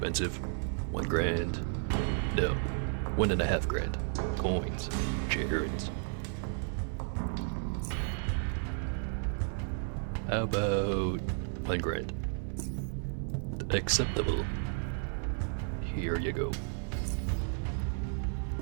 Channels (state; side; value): silent; left; 56 dB below the other